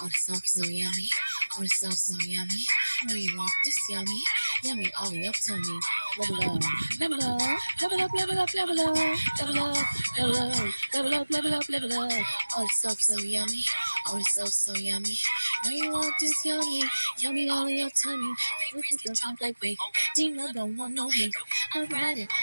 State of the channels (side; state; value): both; inverted; correlation -1.00